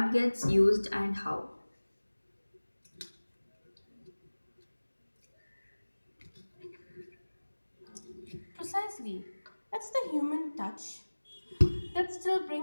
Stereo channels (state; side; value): inverted; both; correlation -1.00